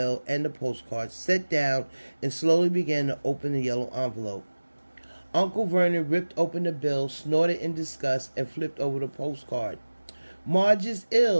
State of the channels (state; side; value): inverted; both; correlation -1.00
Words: and the postcard, sat down, and slowly began to open the yellow envelope. Uncle Vernon ripped open the bill, snorted in disgust, and flipped over the postcard. "Marge is